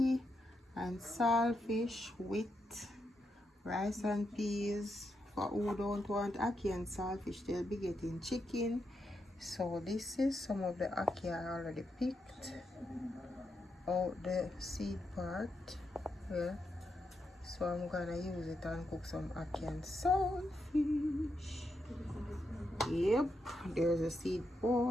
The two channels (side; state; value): both; normal; correlation 0.83